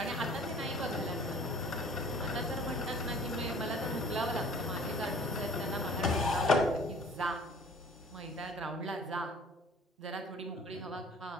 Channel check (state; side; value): normal; both; correlation 0.50